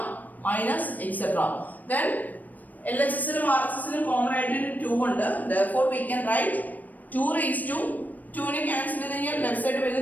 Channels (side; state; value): right; late; 0.082 ms